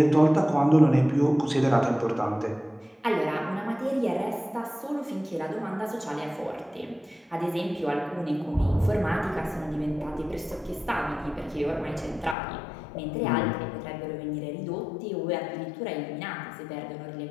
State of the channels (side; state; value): right; drops out; at 12.4 s